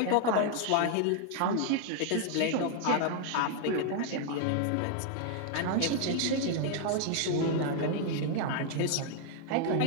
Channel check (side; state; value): both; different; correlation 0.00